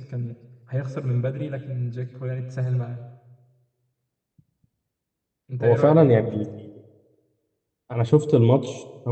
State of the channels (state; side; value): identical; both; correlation 1.00